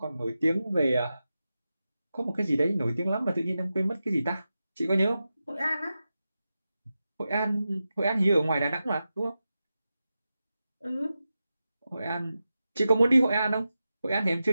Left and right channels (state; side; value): inverted; both; correlation -0.92